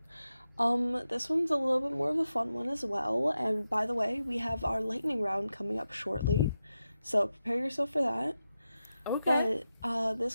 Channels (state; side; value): inverted; both; correlation -0.90